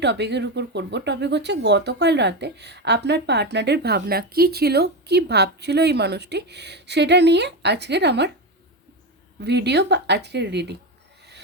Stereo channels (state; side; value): normal; both; correlation 0.15